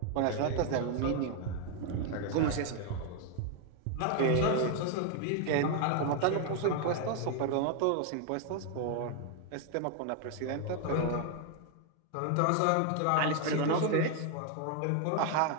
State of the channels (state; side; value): different; both; correlation 0.00